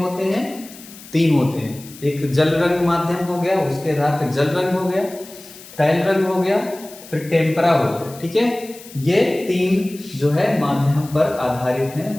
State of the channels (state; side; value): noise; left; hiss, 18 dB below the sound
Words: हैं, 3 होते हैं। एक जल रंग माध्यम हो गया, उसके आधार पे जल रंग हो गया, तैल रंग हो गया, फिर टेम्परा हो गया। ठीक है, ये 3 जो है माध्यम पर आधारित